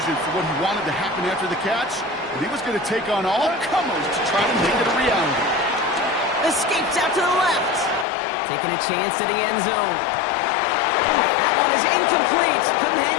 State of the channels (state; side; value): drops out; right; at 8.1 s